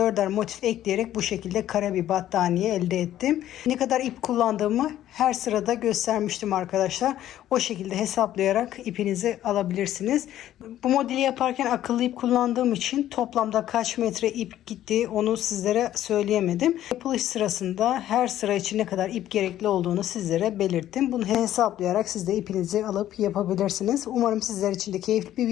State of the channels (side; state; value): right; quieter; 12.5 dB